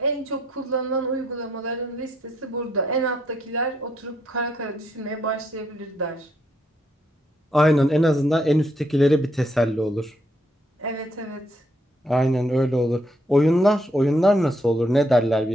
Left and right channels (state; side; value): normal; both; correlation 0.74